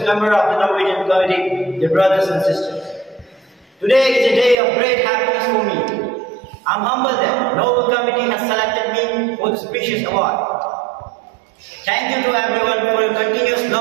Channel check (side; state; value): left; drops out; at 4.5 s